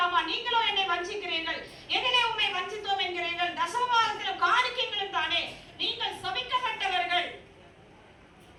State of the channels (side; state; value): both; identical; correlation 1.00